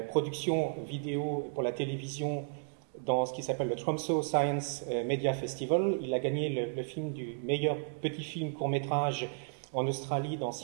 production vidéo pour la télévision dans ce qui s'appelle le Tromsø Science Media Festival. Il a gagné le film du meilleur petit film court-métrage en Australie dans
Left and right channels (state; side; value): silent; left; digital silence